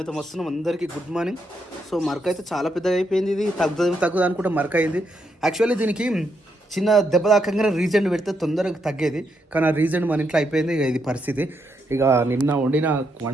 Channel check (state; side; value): normal; both; correlation 0.79